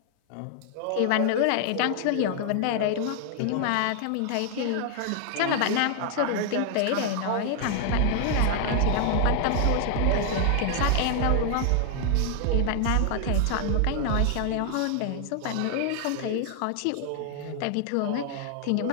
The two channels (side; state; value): both; different; correlation 0.00